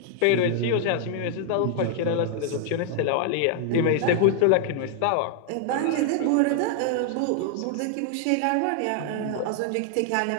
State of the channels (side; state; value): both; different; correlation 0.00